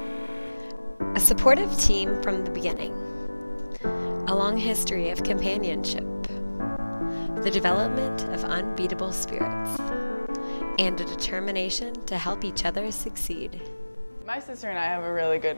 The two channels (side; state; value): both; inverted; correlation -1.00